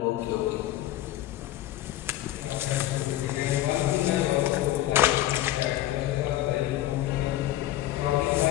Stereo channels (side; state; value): right; quieter; 14.3 dB